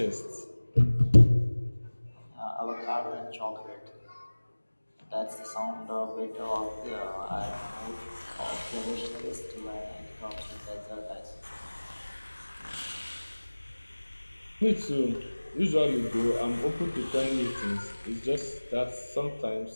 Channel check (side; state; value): both; inverted; correlation -1.00